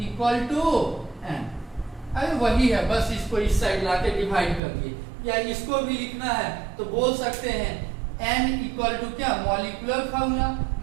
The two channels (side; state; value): left; drops out; at 4.6 s